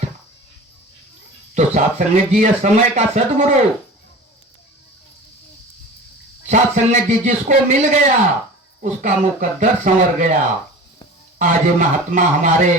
तो साथ संगत जी समय का सदगुरु, साथ संगत जी जिसको मिल गया उसका मुकद्दर संवर गया। आज महात्मा हमारे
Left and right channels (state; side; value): normal; both; correlation 0.37